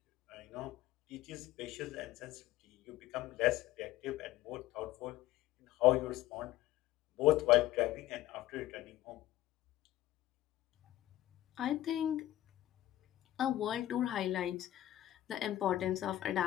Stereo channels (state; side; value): quieter; right; 14.5 dB